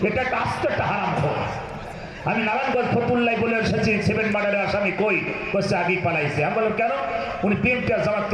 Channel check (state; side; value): identical; both; correlation 1.00